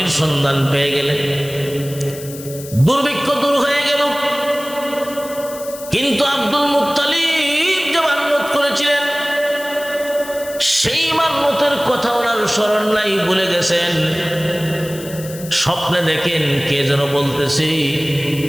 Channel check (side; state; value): left; noise; hiss, 15 dB below the sound